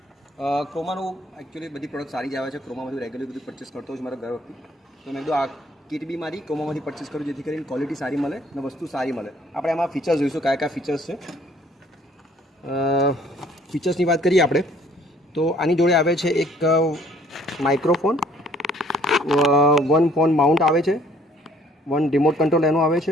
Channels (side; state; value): both; normal; correlation 0.59